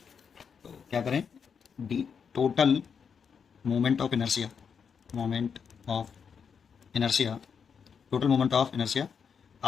तो क्या करें? D total moment of inertia, moment of inertia, total moment of inertia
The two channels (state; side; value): quieter; right; 6.6 dB